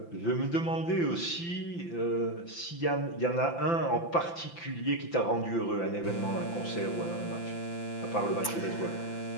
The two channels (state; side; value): late; right; 5.9 ms